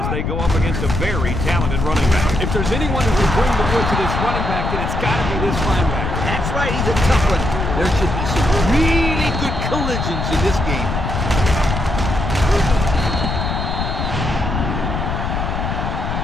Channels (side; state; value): left; noise; rumble, 2 dB below the sound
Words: they go up against a very talented running back. If there's anyone who can bring the wood to this running back, then it's got to be this linebacker. That's right, he's a tough one. There should be some really good collisions in this game.